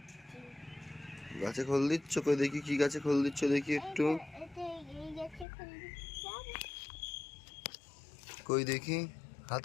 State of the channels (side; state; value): right; drops out; at 5.5 s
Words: গাছে খোল দিচ্ছ? কই দেখি কি গাছে খোল দিচ্ছ, দেখি একটু। কই দেখি